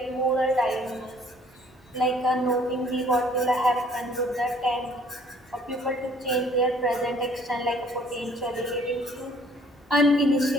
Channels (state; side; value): normal; both; correlation 0.58